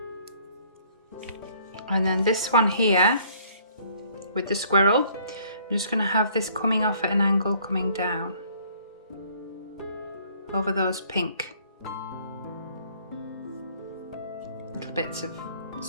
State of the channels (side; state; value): both; inverted; correlation -0.59